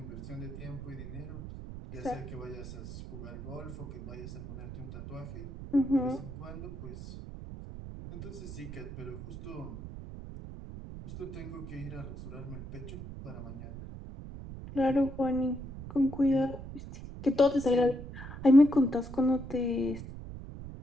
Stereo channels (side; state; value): right; noise; rumble, 10 dB below the sound